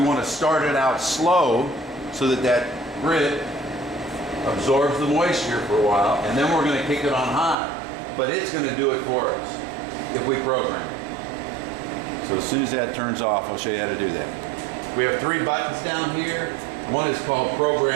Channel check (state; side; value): drops out; left; at 7.6 s